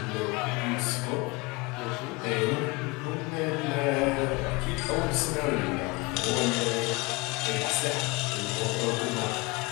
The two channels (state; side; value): quieter; right; 25.3 dB